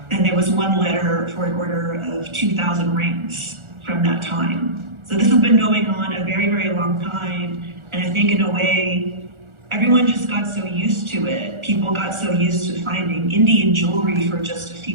And there was one letter for an order of 2,000 rings from that time. So this has been going on a very, very long time. And I think in a way, everyone just got so used to it. People got so used to finding Indian jewelry for just a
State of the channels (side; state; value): left; late; 1.4 ms